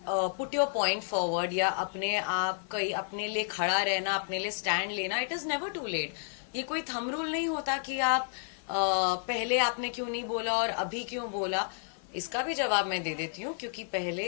put your point forward, या अपने आप कहीं अपने लिए खड़ा रहना, अपने लिए स्टैंड लेना. It is never too late. ये कोई थंब रूल नहीं होता कि आप पहले आपने क्यों नहीं बोला और अभी क्यों बोला. इसका भी जवाब मैं दे देती हूँ, क्योंकि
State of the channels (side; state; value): right; silent; 57 dB below the other